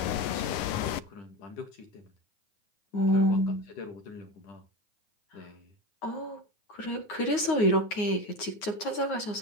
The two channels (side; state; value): right; late; 9.6 ms